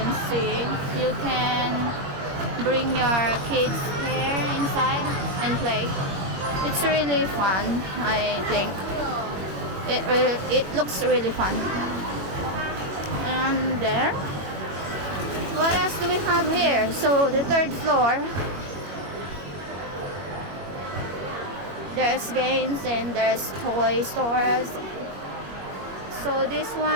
see, you can bring your kids here inside and play. It's really fun. I think it looks really fun. And there, what else do we have here? So the third floor, there's games and there's toy stores. So this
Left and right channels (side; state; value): left; late; 21 ms